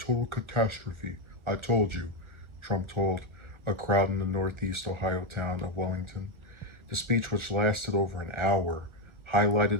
catastrophe. I told you, Trump told a crowd in the northeast Ohio town of Wellington. The speech, which lasted over an hour, highlighted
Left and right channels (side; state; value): left; late; 1.4 ms